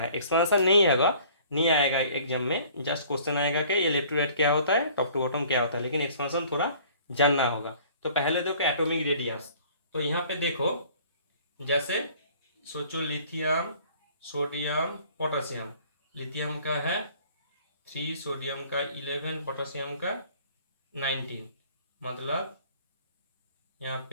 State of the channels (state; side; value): inverted; both; correlation -0.52